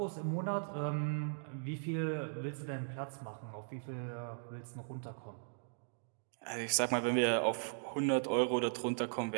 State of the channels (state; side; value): silent; left; digital silence